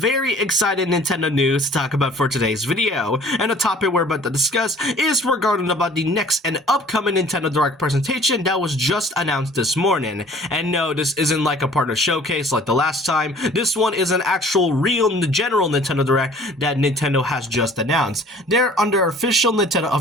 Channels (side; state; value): both; normal; correlation 0.51